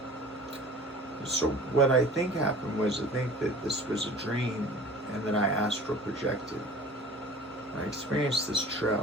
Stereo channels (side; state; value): both; normal; correlation 0.43